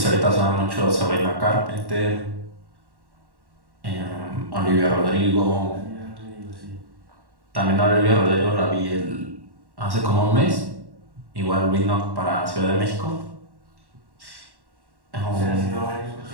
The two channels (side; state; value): left; late; 1.1 ms